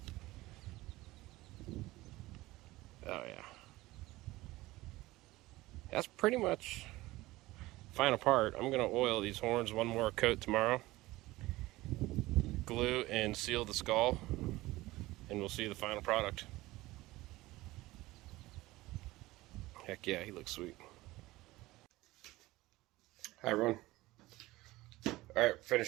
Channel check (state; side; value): quieter; left; 18.8 dB